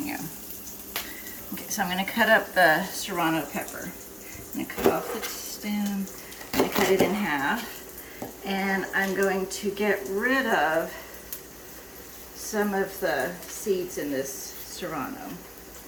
Okay, so I'm going to cut up the serrano pepper. I'm going to cut off the stem, I'm going to cut it in half, and I'm going to get rid of some of the seeds in this serrano.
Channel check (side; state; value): both; identical; correlation 1.00